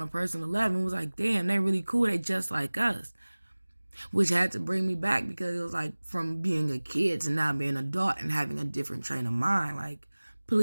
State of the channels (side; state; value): both; inverted; correlation -1.00